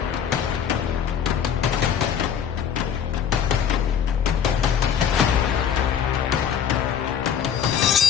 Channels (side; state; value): right; quieter; 8.2 dB